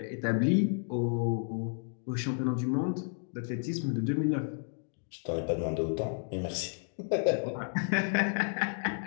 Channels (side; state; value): right; silent; 57 dB below the other